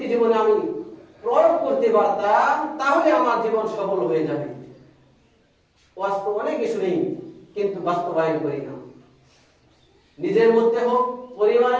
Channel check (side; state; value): both; identical; correlation 1.00